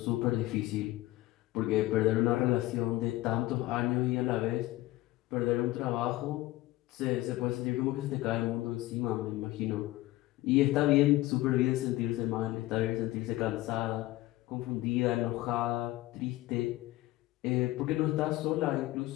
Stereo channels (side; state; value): right; quieter; 17.5 dB